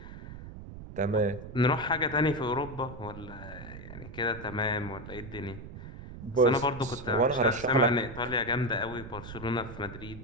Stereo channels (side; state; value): right; noise; rumble, 13 dB below the sound